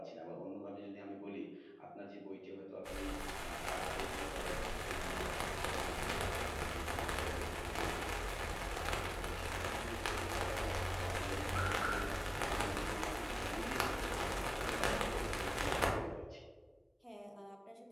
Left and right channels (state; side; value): identical; both; correlation 1.00